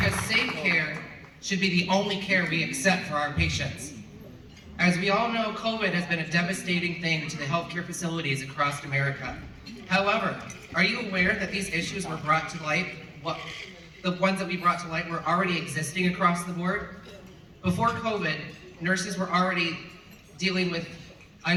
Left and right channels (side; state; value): both; identical; correlation 1.00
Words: safe care should be the only care we accept for our patients. As we all know, COVID has been a devastating thing to the healthcare facilities across America. However, are you aware that these issues were brought to light? The ones that we brought to light were already existing across the board? Before COVID, nurses were already dealing with